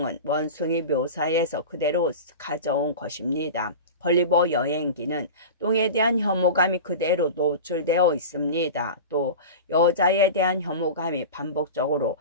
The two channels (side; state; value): both; inverted; correlation -0.30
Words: 원숭이 묘사에서 그대로 가져온 것입니다. 걸리버 여행기는 똥에 대한 혐오감이 그대로 노출되어 있습니다. 또 여자에 대한 혐오감이 반복적으로